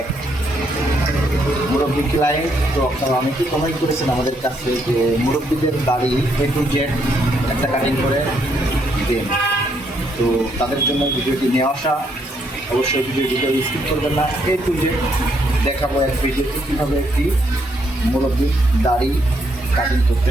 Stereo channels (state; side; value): normal; both; correlation 0.73